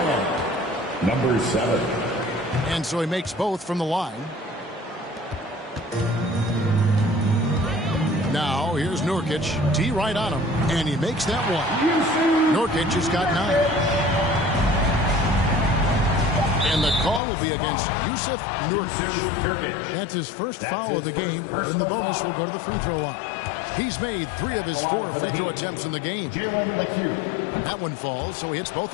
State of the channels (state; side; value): drops out; right; at 17.2 s